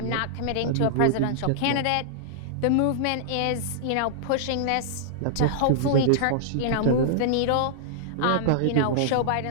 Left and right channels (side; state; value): both; different; correlation -0.02